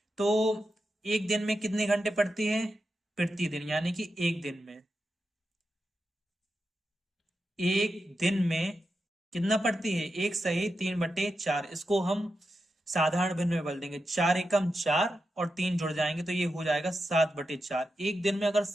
तो एक दिन में कितने घंटे पढ़ती है? प्रतिदिन, यानी कि एक दिन में कितना पढ़ती है? एक सही 3/4, इसको हम साधारण भिन्न में बदल देंगे, 4 एकम 4 और 3 जुड़ जाएंगे तो ये हो जाएगा 7/4। एक दिन में अगर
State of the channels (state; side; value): normal; both; correlation 0.88